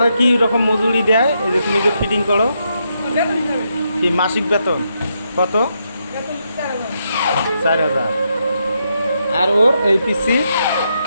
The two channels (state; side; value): inverted; both; correlation -0.80